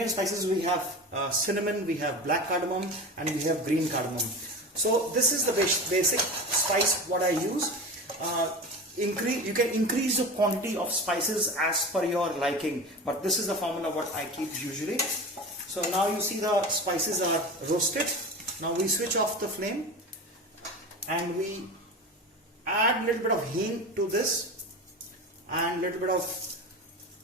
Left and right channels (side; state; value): both; normal; correlation 0.30